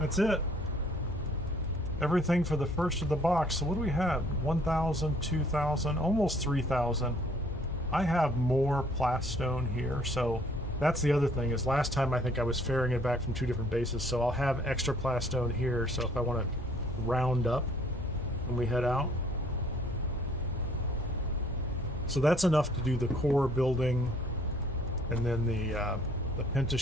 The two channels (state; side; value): normal; both; correlation 0.60